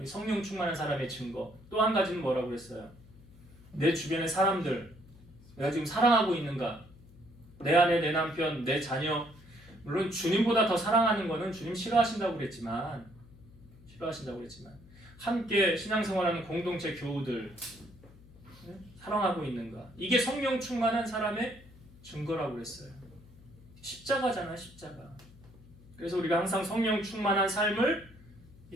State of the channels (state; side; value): noise; left; hum, 22 dB below the sound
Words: 성령 충만한 사람의 증거. 또 한 가지는 뭐라고 했어요? 내 주변의 사람들 내가 지금 사랑하고 있는가? 내 아내, 내 남편, 내 자녀 물론 주님보다 더 사랑하는 거는 주님 싫어하신다고 그랬지만 함께 신앙생활하는 공동체 교우들 사랑하고 있는가? 이게 성령 충만한 사람의 증거라고 그랬어요. 십자가잖아, 십자가. 그래서 우리가 항상 성령 충만한 삶을